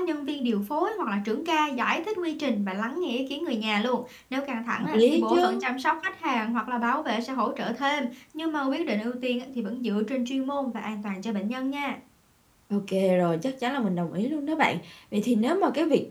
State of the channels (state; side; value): identical; both; correlation 1.00